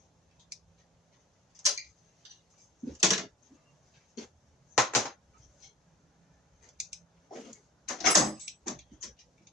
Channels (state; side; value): normal; both; correlation 0.42